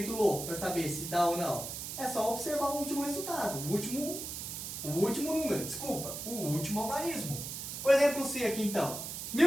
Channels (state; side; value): noise; right; hiss, 6 dB below the sound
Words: louco, para saber se dá ou não. É só observar o último resultado, o último número, desculpa, o último algarismo. O exemplo C aqui então,